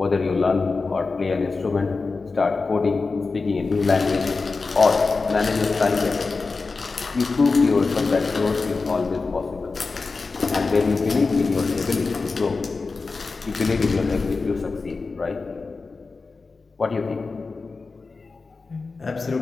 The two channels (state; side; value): quieter; right; 4.1 dB